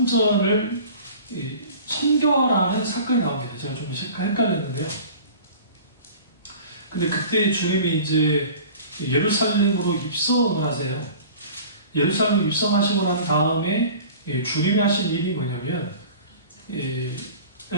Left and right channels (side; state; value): both; inverted; correlation -0.42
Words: 청결하는 사건이 나옵니다. 제가 좀 헷갈렸는데요. 근데 그때 주님이 이제 예루살렘으로 입성을 하세요. 예루살렘 입성하시고 난 다음에 주님이 하신 일이 뭐냐면